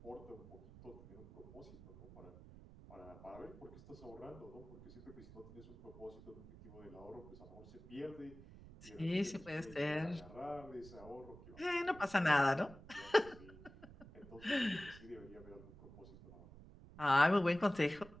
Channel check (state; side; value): noise; right; rumble, 17 dB below the sound